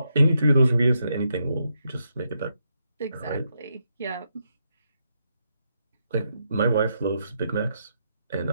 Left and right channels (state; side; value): inverted; both; correlation -0.81